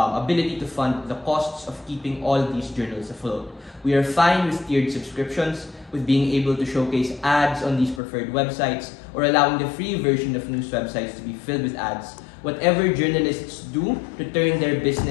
to fund the costs of keeping all these journals afloat. We are fine with tiered subscriptions, with being able to showcase ads on these preferred websites, or allowing the free version of news websites to be filled with ads. Whatever journalists do to turn their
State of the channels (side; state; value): right; drops out; at 8.0 s